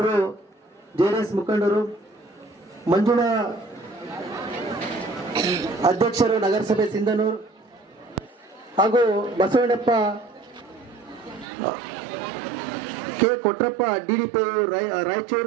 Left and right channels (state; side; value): drops out; left; at 11.5 s